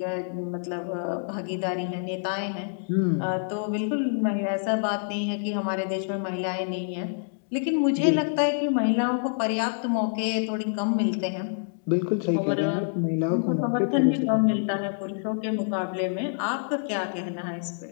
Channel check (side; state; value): right; silent; digital silence